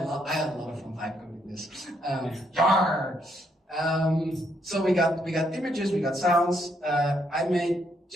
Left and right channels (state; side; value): normal; both; correlation 0.74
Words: a lot of fun vibe coding this. Yar. So we got images, we got sounds. I made